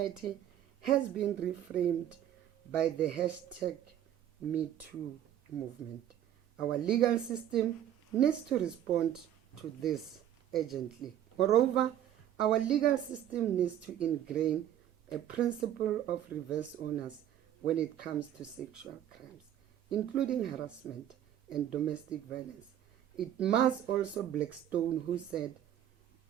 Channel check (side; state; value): left; quieter; 11.0 dB